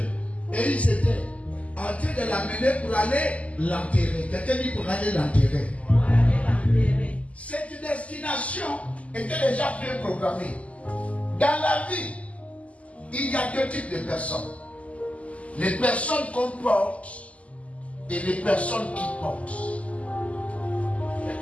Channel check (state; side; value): late; right; 0.067 ms